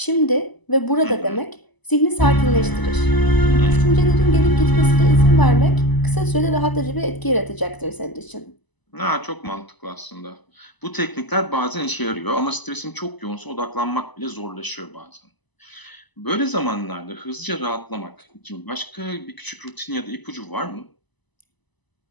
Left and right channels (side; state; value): right; late; 1.0 ms